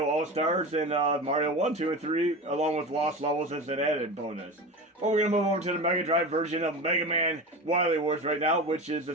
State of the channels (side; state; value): both; normal; correlation 0.27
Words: All-Stars and Mario 1, 2, and 3, along with Lost Levels as an added bonus. But we're going to move over to the Mega Drive version of Mega Man Wily Wars right now, which is